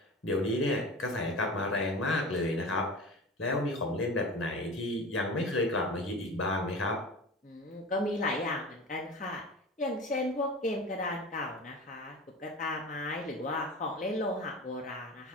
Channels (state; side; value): normal; both; correlation 0.33